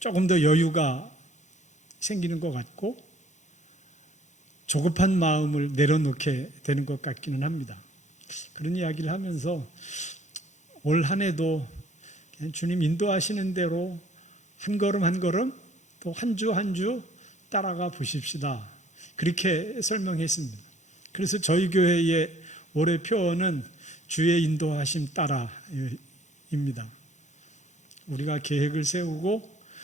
더 여유가 생기는 것 같고 조급한 마음을 내려놓게 되는 것 같기는 합니다. 그런 이야기를 하면서 올 한 해도 주님 인도하시는 대로 한 걸음 한 걸음 또 한 주 한 주 따라가 보십시다, 그렇게 설명했습니다. 그래서 저희 교회의 올해 표어는 주의 인도하심 따라입니다. 우리가 계획을 세우고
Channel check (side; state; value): right; late; 0.34 ms